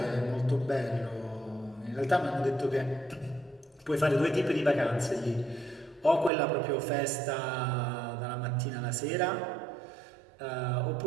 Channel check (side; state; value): left; drops out; at 6.3 s